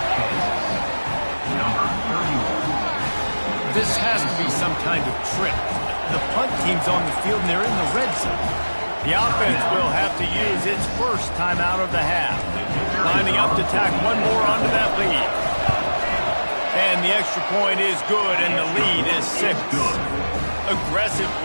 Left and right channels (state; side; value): inverted; both; correlation -1.00